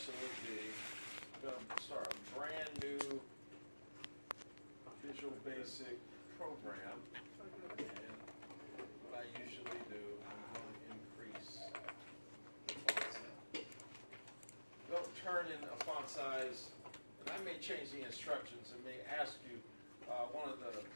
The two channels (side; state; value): both; inverted; correlation -1.00